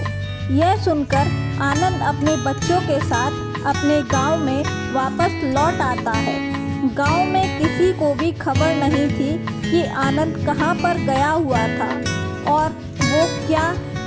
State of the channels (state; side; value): identical; both; correlation 1.00